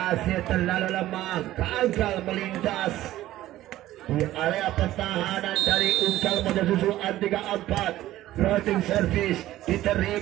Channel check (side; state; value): left; quieter; 14.7 dB